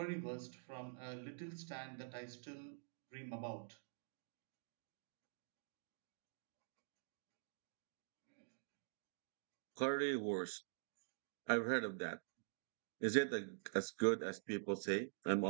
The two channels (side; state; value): left; silent; digital silence